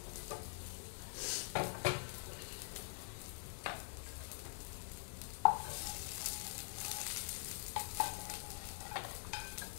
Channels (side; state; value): right; silent; digital silence